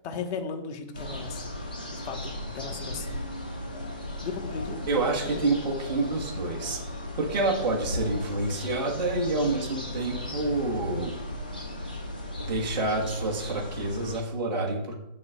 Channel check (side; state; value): both; inverted; correlation -0.37